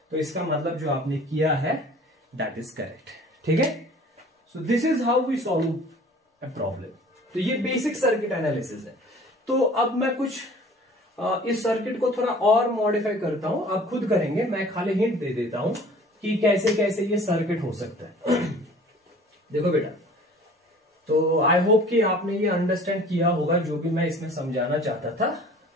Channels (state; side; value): normal; both; correlation 0.48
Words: तो इसका मतलब जो आपने किया है दैट इज करेक्ट। ठीक है, so this is how we solve a problem. तो ये बेसिक सर्किट एनालिसिस है। तो अब मैं कुछ इस सर्किट को थोड़ा और मॉडिफाई करता हूं, आप खुद करेंगे, मैं खाली हिंट दे देता हूं कि कैसे कैसे ये सर्किट हो सकता है। देखो बेटा, तो आई होप कि आपने ये अंडरस्टैंड किया होगा, जो भी मैं इसमें समझाना चाहता था